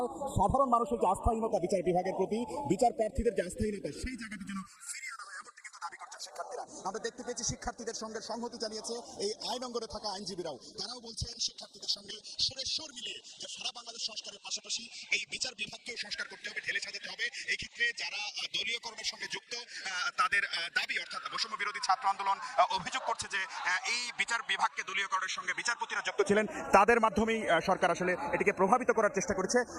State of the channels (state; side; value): identical; both; correlation 1.00